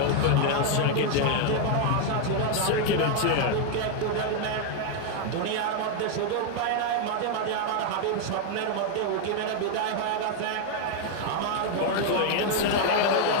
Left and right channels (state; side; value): different; both; correlation 0.00